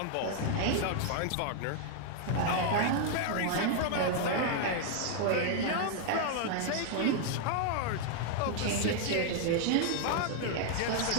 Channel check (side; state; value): both; different; correlation 0.00